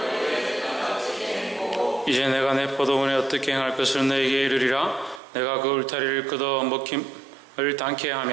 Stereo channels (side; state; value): left; drops out; at 5.2 s